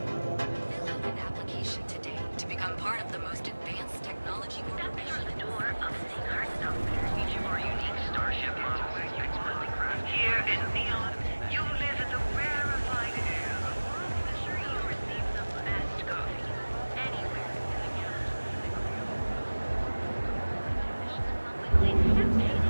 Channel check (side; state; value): both; inverted; correlation -1.00